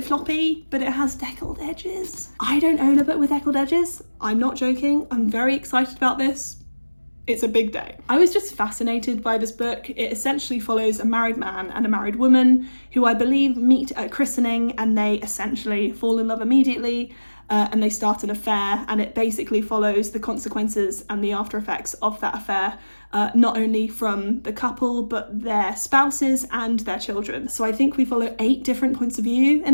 floppy, but it has deckled edges. I don't own a book with deckled edges. I'm not joking. I'm very excited about this. It's a big day. I was just fascinated by this book. It essentially follows a married man and a married woman who I believe meet at christening, and they essentially fall in love immediately and they start an affair, and it basically follows the consequences and the after effects of that affair, not only from the couple but their spouses and their children. So I think we follow 8 different points of view in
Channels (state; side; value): inverted; both; correlation -1.00